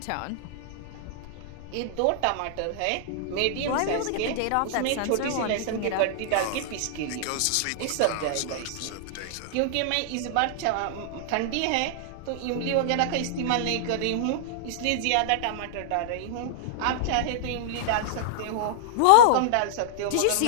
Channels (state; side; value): different; both; correlation -0.01